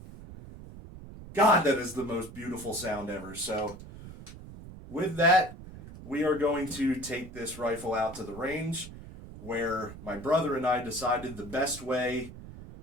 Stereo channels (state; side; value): noise; right; rumble, 14 dB below the sound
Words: God, that is the most beautiful sound ever. So with that, we are going to take this rifle out to the range. where my brother and I decided the best way